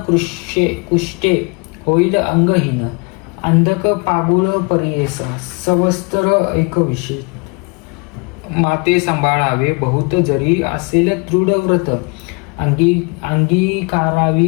कुष्टे होईल अंगहीन. अंधक पागुळ परियेस सवस्तर एकविषय. माते सांभाळावे बहुत जरी असेल दृढ व्रत.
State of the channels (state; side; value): quieter; right; 31.2 dB